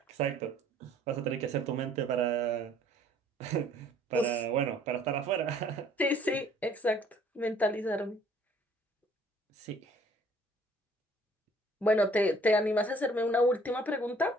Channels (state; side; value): normal; both; correlation 0.57